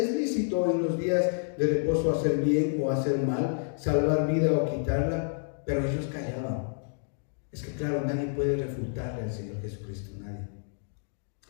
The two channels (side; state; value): right; silent; 59 dB below the other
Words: lícito en los días de reposo hacer bien o hacer mal, salvar vida o quitarla? Pero ellos callaban. Es que claro, nadie puede refutarle al Señor Jesucristo, nadie.